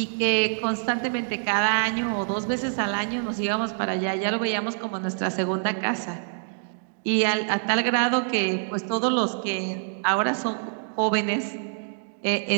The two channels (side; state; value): left; silent; digital silence